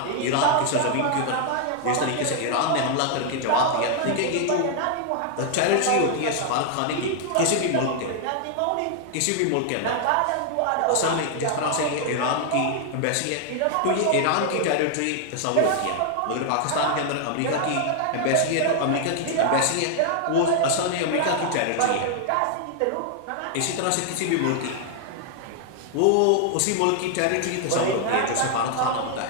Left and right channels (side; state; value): both; different; correlation 0.00